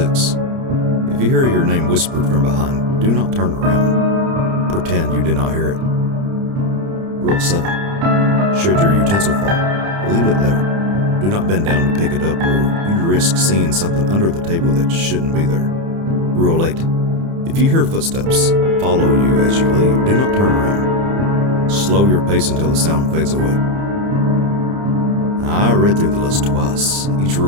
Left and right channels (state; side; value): late; left; 30 ms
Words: If you hear your name whispered from behind, do not turn around. Pretend you did not hear it. Rule 7. Should your utensil fall, leave it there. Do not bend down to pick it up, or you risk seeing something under the table that shouldn't be there. Rule 8. If you hear footsteps follow you as you leave, do not turn around. Slow your pace until the sound fades away. I read through the list twice, each